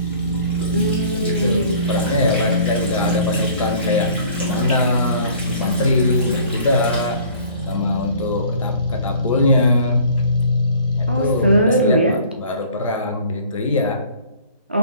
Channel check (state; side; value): inverted; both; correlation -0.51